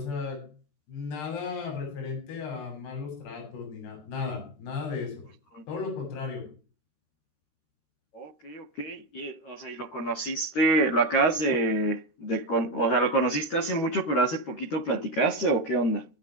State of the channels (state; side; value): late; right; 13 ms